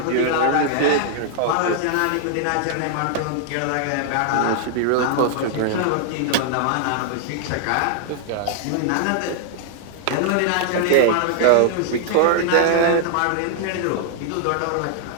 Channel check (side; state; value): both; different; correlation 0.00